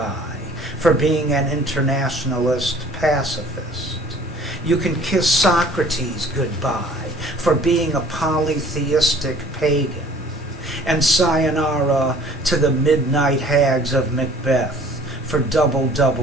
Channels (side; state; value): both; normal; correlation 0.52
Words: for being an internationalist pacifist. You can kiss Socrates goodbye for being a polytheistic pagan. And sayonara to the midnight hags of Macbeth for double